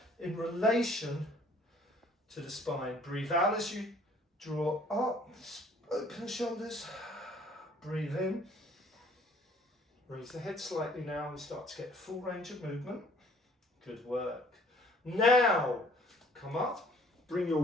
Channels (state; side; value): normal; both; correlation 0.57